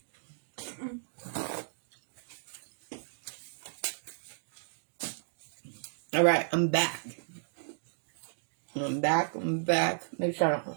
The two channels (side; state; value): left; silent; digital silence